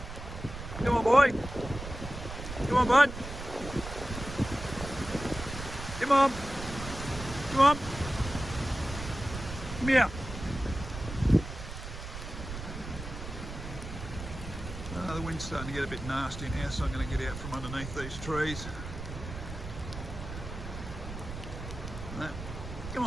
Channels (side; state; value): right; noise; rumble, 9 dB below the sound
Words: Come on, boy. Come on, bud. Come on. Come on. Come here. The wind's starting to get a bit nasty now, so I'm going to get out from underneath these trees. Come